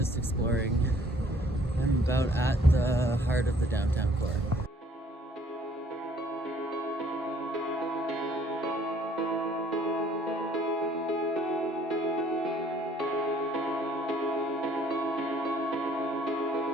exploring. I'm about at the heart of the downtown core.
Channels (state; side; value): normal; both; correlation 0.60